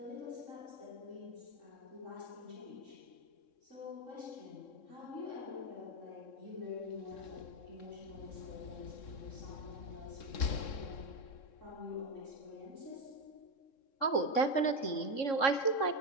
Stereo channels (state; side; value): late; right; 3.7 ms